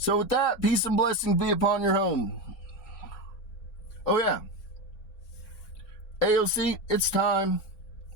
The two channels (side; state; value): right; late; 3.6 ms